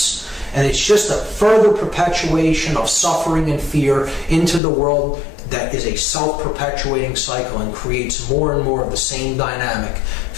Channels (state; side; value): drops out; right; at 4.6 s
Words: And it's just a further perpetuation of suffering and fear into the world that is a self-perpetuating cycle and creates more and more of the same dynamic: